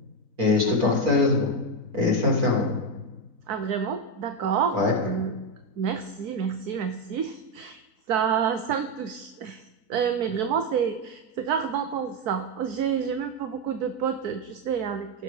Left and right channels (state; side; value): late; left; 4.0 ms